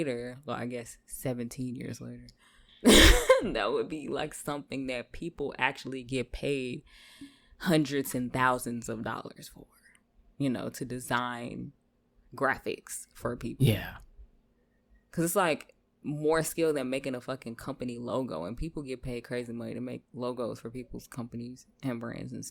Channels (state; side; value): identical; both; correlation 1.00